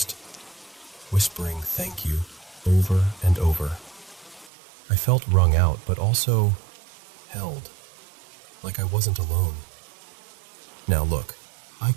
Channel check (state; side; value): drops out; left; at 4.5 s